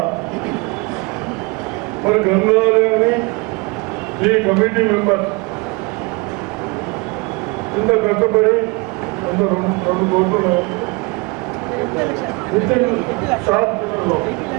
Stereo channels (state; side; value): quieter; left; 28.1 dB